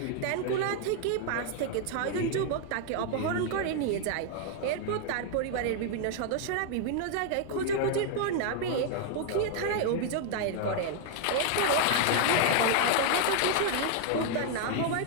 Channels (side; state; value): both; different; correlation 0.00